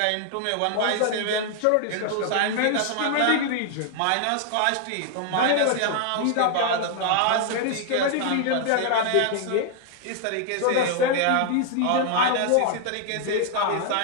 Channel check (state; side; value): different; both; correlation 0.00